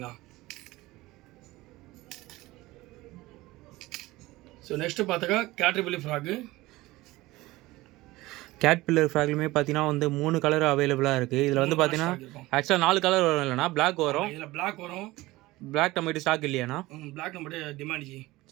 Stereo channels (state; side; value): quieter; left; 19.2 dB